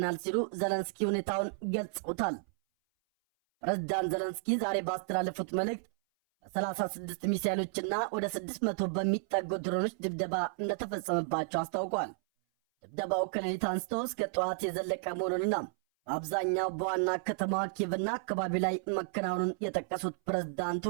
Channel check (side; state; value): left; silent; 56 dB below the other